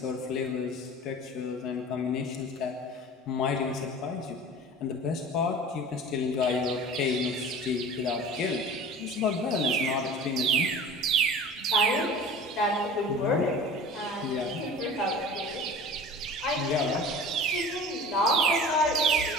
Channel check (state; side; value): normal; both; correlation 0.39